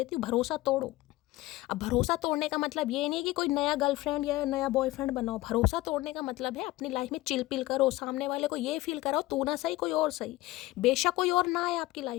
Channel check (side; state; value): right; quieter; 18.1 dB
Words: हूँ, भरोसा तोड़ो। अब भरोसा तोड़ने का मतलब ये नहीं कि कोई नया गर्लफ्रेंड या नया बॉयफ्रेंड बनाओ। भरोसा तोड़ने का मतलब है अपनी लाइफ में चिल पिल करो, सामने वाले को ये फील कराओ तू ना सही कोई और सही, बेशक कोई और ना आए आपकी